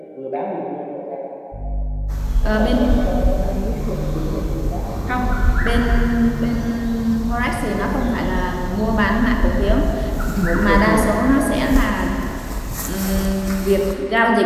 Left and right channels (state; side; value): identical; both; correlation 1.00